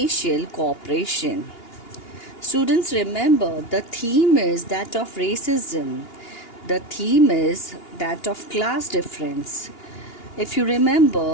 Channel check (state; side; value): late; right; 2.8 ms